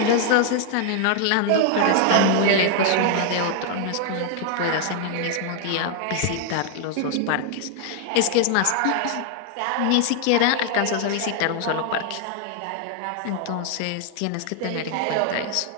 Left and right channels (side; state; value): both; different; correlation 0.00